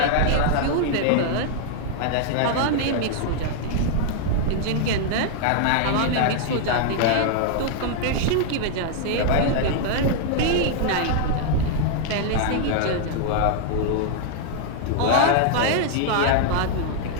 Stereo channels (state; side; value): different; both; correlation -0.01